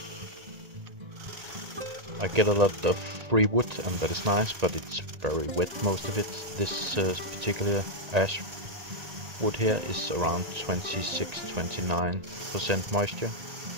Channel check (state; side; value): late; left; 1.9 ms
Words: I get a lot of free wood and that is nice, but it's very wet, most of it. This particular ash wood here is around 26-29% moisture,